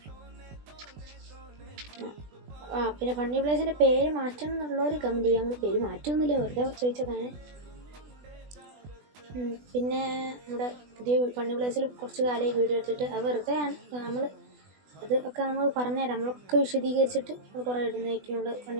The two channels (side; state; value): left; late; 20 ms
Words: പിന്നെ ഫണ്ണി പ്ലേയേഴ്സിൻ്റെ പേര് മാറ്റണം എന്നുള്ളവർ കമൻറ്റ് ചെയ്യുക. നമ്മൾ പേര് മാറ്റമൊന്നുമില്ല, വെറുതെ ചോദിച്ചതാണ്. പിന്നെ നമ്മുടെ പുതിയ ഫണ്ണി പ്ലേസിൽ കുറച്ച് കാലമായി വീഡിയോ എടുത്തിട്ട് അത് വെറുതെ നമ്മൾ അതൊക്കെ നമ്മൾ പറഞ്ഞുതരാം. നമ്മളൊക്കെ വിശദീകരിച്ചിട്ട് നമ്മൾ കുറേ ഇടുന്നതായിരിക്കും. നമ്മൾ ഫണ്ണി